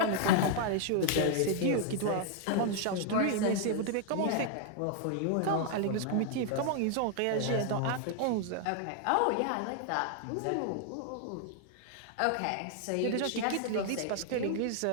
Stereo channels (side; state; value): both; different; correlation 0.00